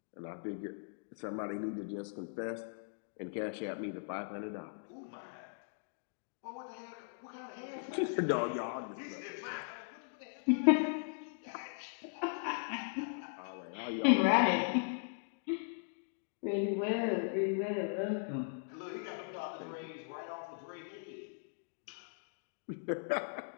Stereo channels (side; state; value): right; silent; digital silence